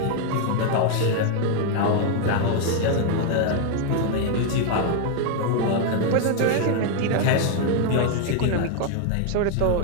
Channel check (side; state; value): both; different; correlation 0.00